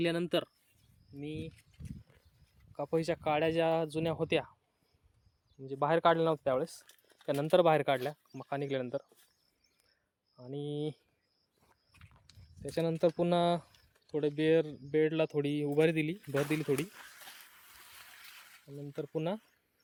मी कपाशीच्या काड्या ज्या जुन्या होत्या, म्हणजे बाहेर काढल्या नव्हत्या त्यावेळेस, त्यानंतर बाहेर काढल्या मका निघाल्यानंतर. आणि त्याच्यानंतर पुन्हा थोडे बेडला थोडी उभारी दिली, भर दिली थोडी. नंतर पुन्हा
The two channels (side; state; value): both; identical; correlation 1.00